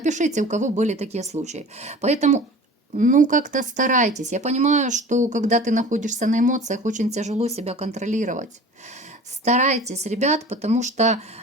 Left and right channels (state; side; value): normal; both; correlation 0.41